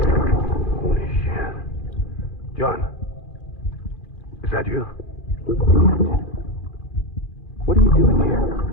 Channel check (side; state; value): right; late; 2.4 ms